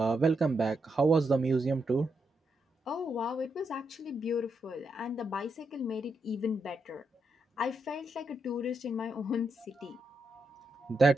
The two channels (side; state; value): both; normal; correlation 0.82